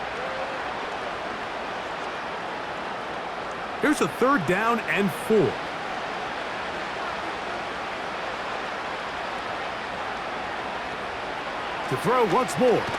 Here's a 3rd down and 4. To throw once more.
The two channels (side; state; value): both; identical; correlation 1.00